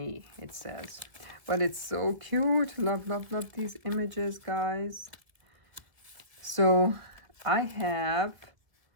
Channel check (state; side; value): late; left; 2.0 ms